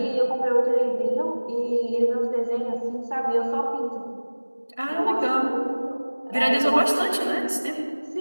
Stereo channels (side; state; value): both; inverted; correlation -1.00